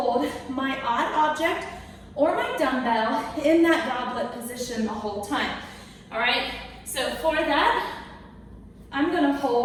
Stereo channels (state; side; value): identical; both; correlation 1.00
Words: my odd object or my dumbbell in that goblet position the whole time. All right, so for that, I'm gonna